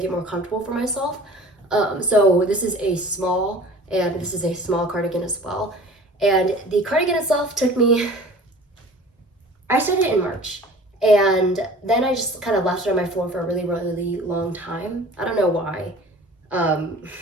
it more comfortable for myself. So this is a small, and this is a small cardigan as well. And the cardigan itself took me, I started it in March. And then I just kind of left it on my floor for a really long time. I don't know why. I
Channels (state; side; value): normal; both; correlation 0.44